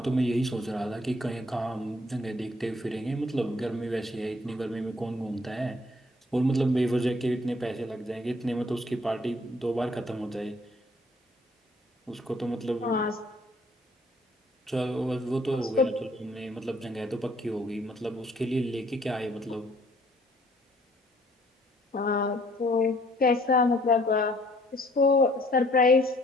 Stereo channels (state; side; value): normal; both; correlation 0.61